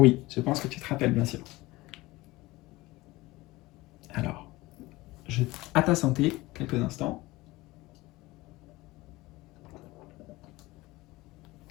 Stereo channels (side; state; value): right; quieter; 20.0 dB